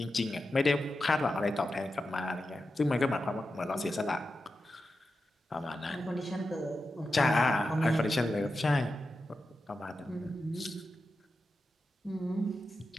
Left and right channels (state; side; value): normal; both; correlation 0.90